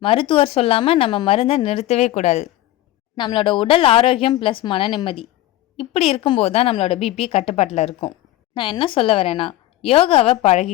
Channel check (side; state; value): right; quieter; 15.2 dB